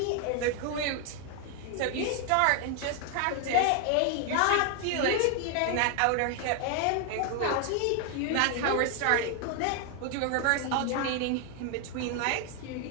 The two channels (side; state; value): both; different; correlation 0.00